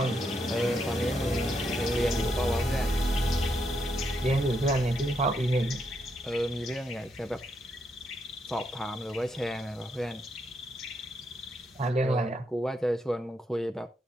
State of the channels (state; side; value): normal; both; correlation 0.79